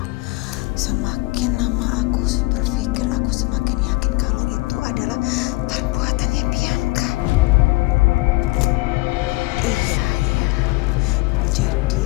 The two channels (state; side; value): quieter; right; 23.4 dB